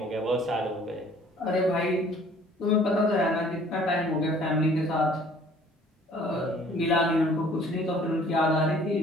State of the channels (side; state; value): both; normal; correlation 0.54